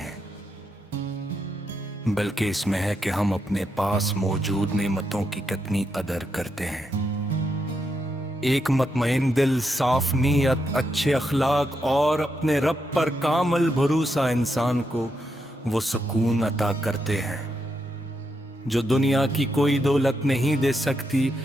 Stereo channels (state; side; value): normal; both; correlation 0.82